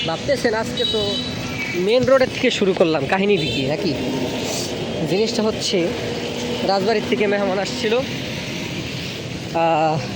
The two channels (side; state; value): both; identical; correlation 1.00